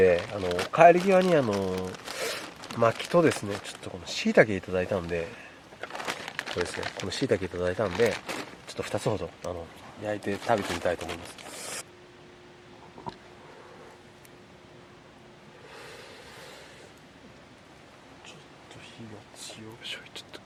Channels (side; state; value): both; identical; correlation 1.00